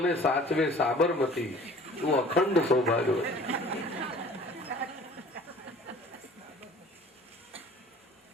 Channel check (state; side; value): normal; both; correlation 0.48